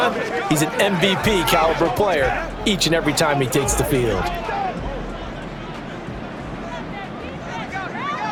he's an MVP caliber player each and every time he takes the field.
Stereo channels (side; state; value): both; identical; correlation 1.00